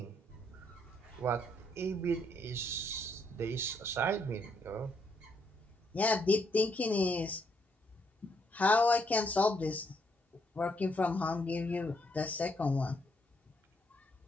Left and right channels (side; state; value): both; normal; correlation 0.73